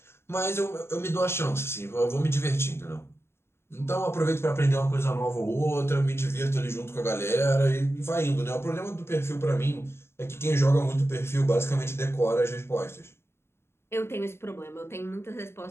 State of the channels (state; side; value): late; right; 0.12 ms